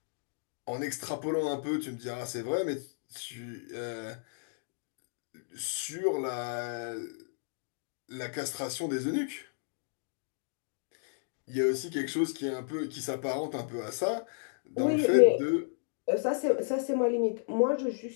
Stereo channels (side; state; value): right; silent; digital silence